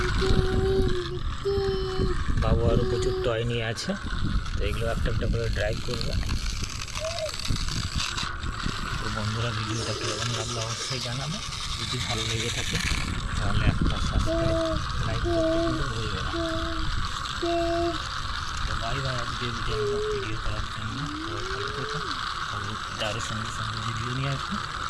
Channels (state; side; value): identical; both; correlation 1.00